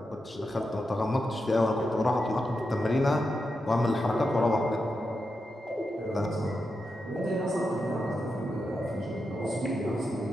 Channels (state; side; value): normal; both; correlation 0.87